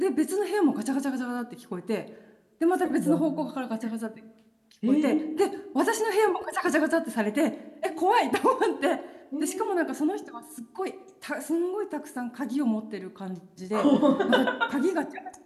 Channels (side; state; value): both; identical; correlation 1.00